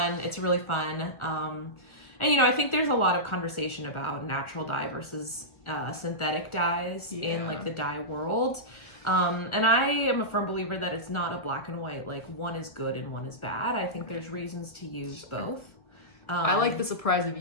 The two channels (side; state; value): right; late; 1.8 ms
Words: really fun. And you know, I think there's a lot of conversation about natural dye versus synthetic dyes in like the dye world. And I am a firm believer that it's not a black and white, like one is good and one is bad. I think there's reasons to use both. I like the surprise of